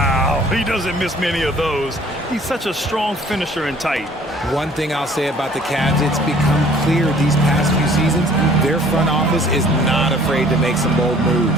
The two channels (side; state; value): both; normal; correlation 0.54